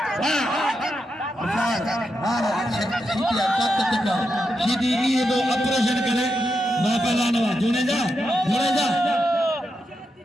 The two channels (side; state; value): both; normal; correlation 0.85